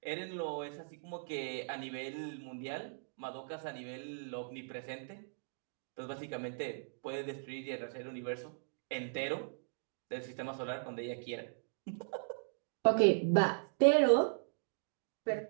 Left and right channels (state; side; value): silent; left; digital silence